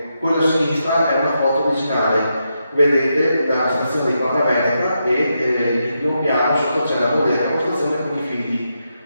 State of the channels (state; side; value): inverted; both; correlation -0.84